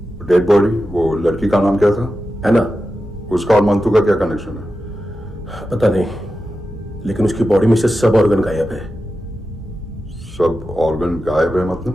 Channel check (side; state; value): both; normal; correlation 0.91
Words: डेड बॉडी, वो लड़की का नाम क्या था? है ना? उसका और मंतू का क्या कनेक्शन है? पता नहीं, लेकिन उसकी बॉडी में से सब ऑर्गन गायब है। सब ऑर्गन गायब है